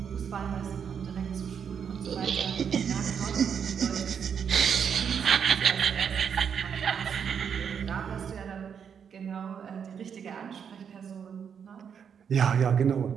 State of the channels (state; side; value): quieter; left; 7.4 dB